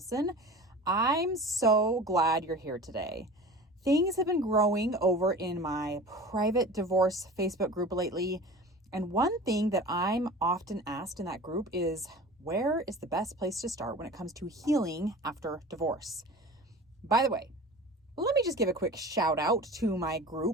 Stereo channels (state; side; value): normal; both; correlation 0.37